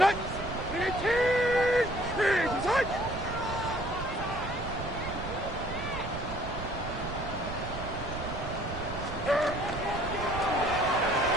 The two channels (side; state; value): right; noise; rumble, 8 dB below the sound